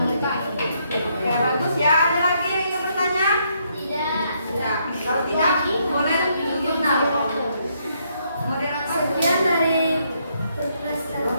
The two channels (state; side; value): inverted; both; correlation -0.74